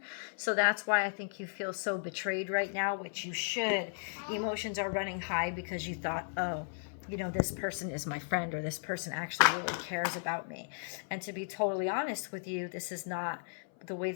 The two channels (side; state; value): right; silent; 54 dB below the other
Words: So that's why I think you feel so betrayed right now, which you should. Emotions are running high because you thought, oh, you know, this person is my friend, or this person actually really cares about me. And to be totally honest with you, this is not the way